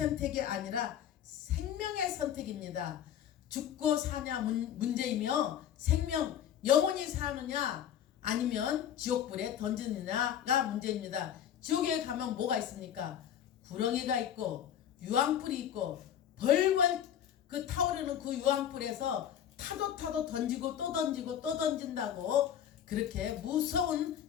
아니라 생명의 선택입니다. 죽고 사냐 문제이며 생명 영원히 사느냐 아니면 지옥불에 던지느냐가 문제입니다. 지옥에 가면 뭐가 있습니까? 구렁이가 있고 유황불이 있고 벌벌 그 타오르는 그 유황불에서 타도 던지고 또 던지고 또 던진다고 그렇게 무서운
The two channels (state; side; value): quieter; right; 9.9 dB